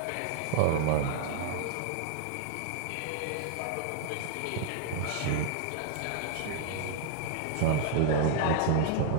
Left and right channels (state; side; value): different; both; correlation -0.01